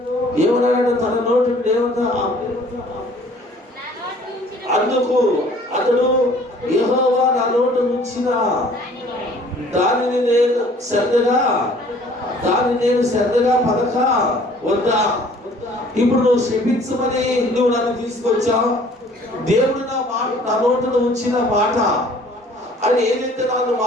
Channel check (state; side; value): normal; both; correlation 0.54